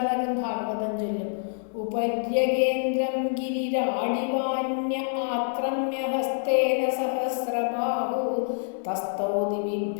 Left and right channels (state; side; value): silent; right; digital silence